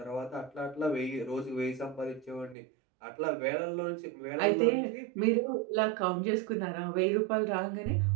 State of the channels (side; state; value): left; drops out; at 2.6 s